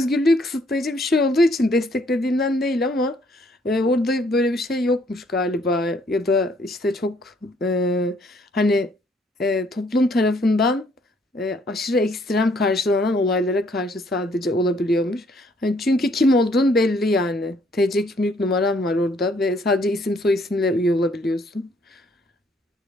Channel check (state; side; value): normal; both; correlation 0.65